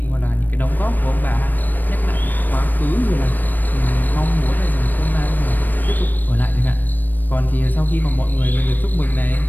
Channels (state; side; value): late; right; 0.090 ms